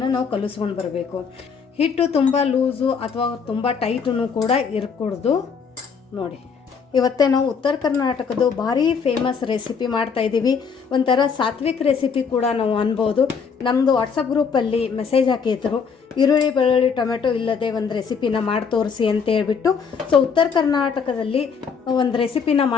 ನಾವು ಕಲಿಸ್ಕೊಂಡು ಬರಬೇಕು. ಹಿಟ್ಟು ತುಂಬ ಲೂಸು ಅಥವಾ ತುಂಬ ಟೈಟೂ ಕೂಡ ಇರಕೂಡ್ದು. ನೋಡಿ ಇವತ್ತೇ ನಾವು ಉತ್ತರ ಕರ್ನಾಟಕದ ಭಾರಿ ಫೇಮಸ್ ರೆಸಿಪಿ ಮಾಡ್ತಾಯಿದ್ದೀವಿ. ಒಂಥರ ಸಾತ್ವಿಕ್ ರೆಸಿಪಿ ಕೂಡ ನಾವು ಅನ್ಬೋದು. ನಮ್ಮದು ವಾಟ್ಸಪ್ ಗ್ರೂಪಲ್ಲಿ ಮೆಸೇಜ್ ಹಾಕಿದ್ರು, ಈರುಳ್ಳಿ ಬೆಳ್ಳುಳ್ಳಿ ಟೊಮೆಟೊ ಇಲ್ಲದೆ ಒಂದು ರೆಸಿಪಿನ ಮಾಡಿ ತೋರಿಸಿ ಅಂತ ಹೇಳ್ಬಿಟ್ಟು. ಸೊ ಉತ್ತರ ಕರ್ನಾಟಕದಲ್ಲಿ ಒಂದು ರೆಸಿಪಿನ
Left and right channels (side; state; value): right; quieter; 6.0 dB